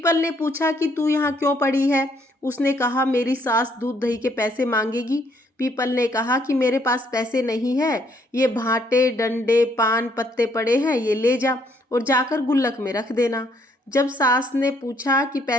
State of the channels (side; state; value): both; normal; correlation 0.68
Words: ने पूछा कि तू यहाँ क्यों पड़ी है? उसने कहा मेरी सास दूध दही के पैसे मांगेगी। पीपल ने कहा कि मेरे पास पैसे नहीं है, ये भाटे डंडे पान पत्ते पड़े हैं, ये ले जा और जाकर गुल्लक में रख देना। जब सास ने पूछा कि